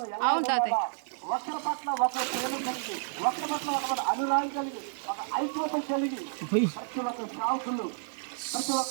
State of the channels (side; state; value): left; silent; digital silence